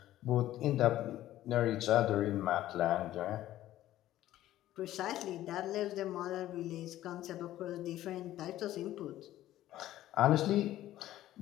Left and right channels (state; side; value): quieter; right; 14.0 dB